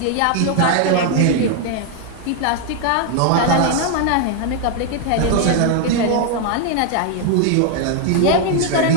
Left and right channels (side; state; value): both; different; correlation 0.00